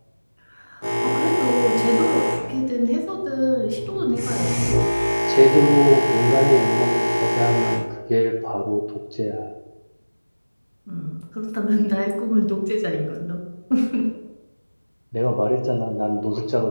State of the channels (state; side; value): inverted; both; correlation -1.00